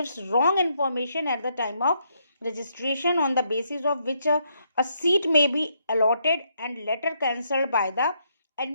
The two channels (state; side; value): inverted; both; correlation -0.75